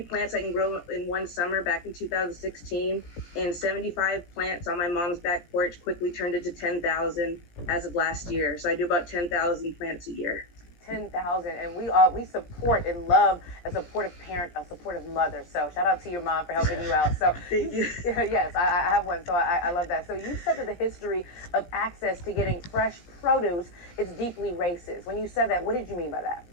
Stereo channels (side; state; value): right; late; 17 ms